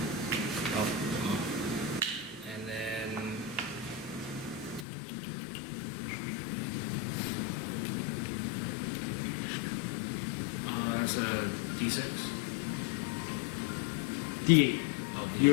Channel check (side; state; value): right; drops out; at 4.9 s